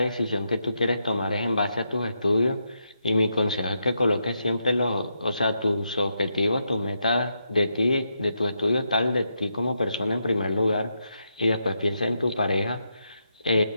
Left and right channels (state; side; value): inverted; both; correlation -0.82